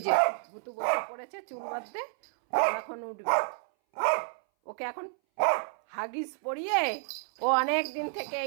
যে ভুতু বসে পড়েছে চুল বাঁধতে, ও এখন উঠবে। ওকে এখন হাগিস পরিয়ে, ও অনেক দিন থেকে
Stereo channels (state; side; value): silent; left; 58 dB below the other